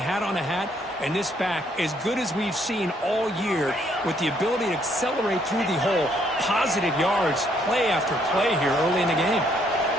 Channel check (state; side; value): normal; both; correlation 0.69